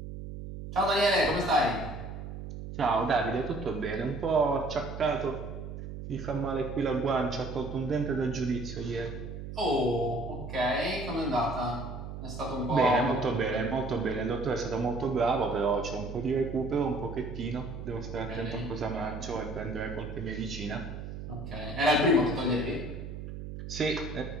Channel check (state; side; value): noise; right; hum, 8 dB below the sound